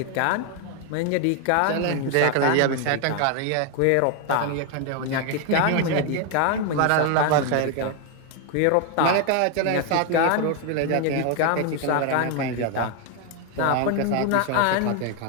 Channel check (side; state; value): both; different; correlation 0.01